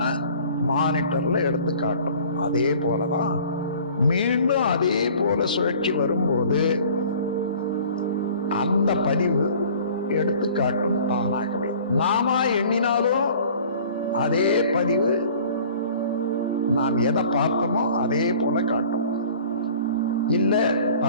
மானிட்டர்ல எடுத்து காட்டும். அதே போலதான் மீண்டும் அதே போல சுழற்சி வரும்போது அந்த பதிவு எடுத்து காட்டும் தானாகவே. நாம எண்ணினாலும் அதே பதிவு நாம் எதை பார்த்தோமோ அதே போல காட்டும். இல்ல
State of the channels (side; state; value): both; inverted; correlation -0.48